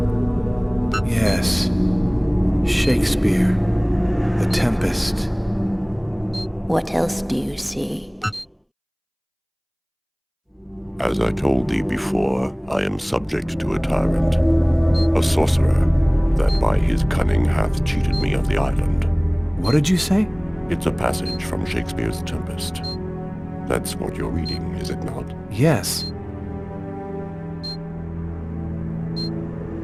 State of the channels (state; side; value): identical; both; correlation 1.00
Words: Yes. Shakespeare. The Tempest. What else do you see? As I told thee before, I am subject to a tyrant, a sorcerer, that by his cunning hath cheated me of the island. What did you say? It's a passage from Shakespeare's Tempest. That's what you're reading, is it not? Yes.